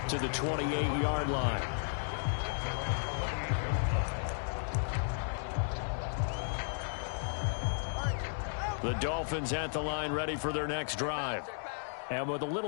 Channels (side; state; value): right; silent; digital silence